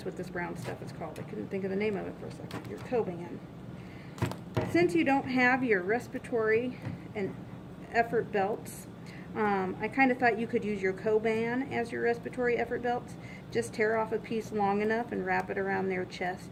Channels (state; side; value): identical; both; correlation 1.00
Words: what this brown stuff is called. I couldn't think of the name of it for a second. Your Coban. Since you don't have your respiratory and effort belts, I kind of thought you could use your Coban as your respiratory effort belts. Just tear off a piece long enough and wrap it around their chest